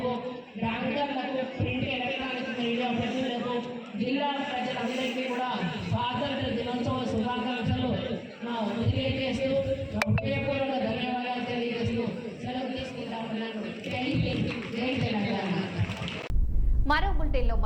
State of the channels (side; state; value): both; identical; correlation 1.00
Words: బ్యాంకర్లకు, ప్రింట్ ఎలక్ట్రానిక్ మీడియా ప్రతినిధులకు, జిల్లా ప్రజలందరికీ కూడా స్వాతంత్ర దినోత్సవ శుభాకాంక్షలు తెలియజేస్తూ హృదయపూర్వక ధన్యవాదాలు తెలియజేస్తూ సెలవు తీసుకుంటామన్నాను. జై హింద్, జై తెలంగాణ. మరో బులెటిన్లో